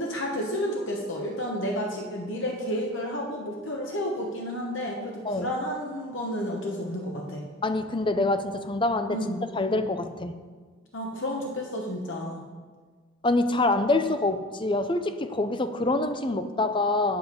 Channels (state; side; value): normal; both; correlation 0.38